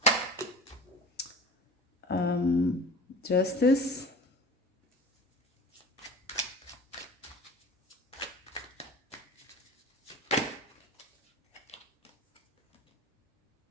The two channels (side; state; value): both; normal; correlation 0.38